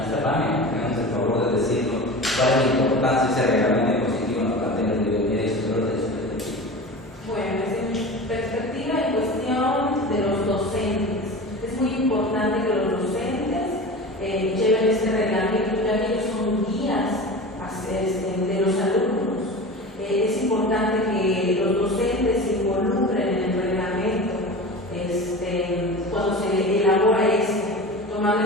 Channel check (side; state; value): both; normal; correlation 0.32